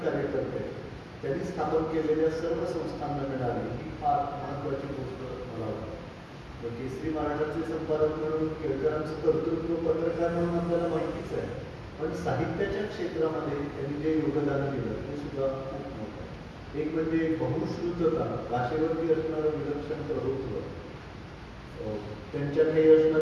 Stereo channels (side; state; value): both; identical; correlation 1.00